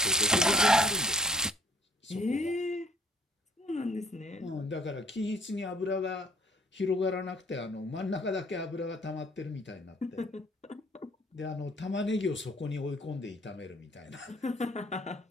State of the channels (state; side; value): normal; both; correlation 0.58